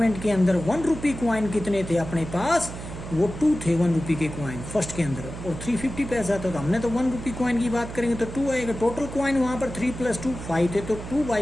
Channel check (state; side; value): noise; right; hum, 10 dB below the sound